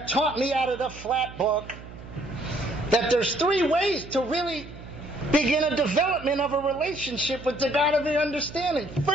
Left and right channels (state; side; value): noise; right; hum, 15 dB below the sound